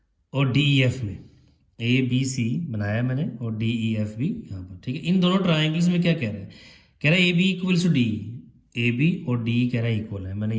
और डी ई एफ में, ए बी सी बनाया मैंने और डी ई एफ भी यहाँ पर, ठीक है। इन दोनों ट्राइंगल्स में क्या कह रहा है, कह रहा है A B equals to D, A B और डी कह रहा है इक्वल है, मैंने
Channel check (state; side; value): identical; both; correlation 1.00